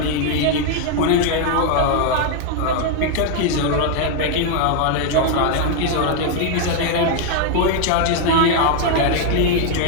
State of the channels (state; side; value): different; both; correlation 0.00